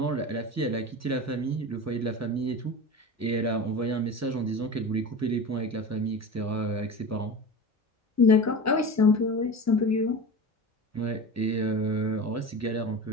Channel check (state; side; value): normal; both; correlation 0.30